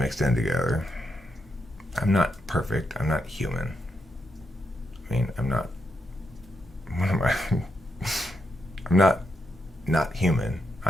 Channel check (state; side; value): normal; both; correlation 0.82